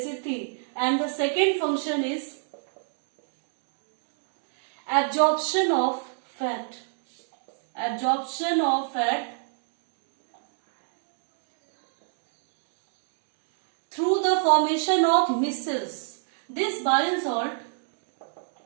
And the second function is absorption of fat. Absorption of fat through the formation of micelles. This bile salt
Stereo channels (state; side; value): silent; left; digital silence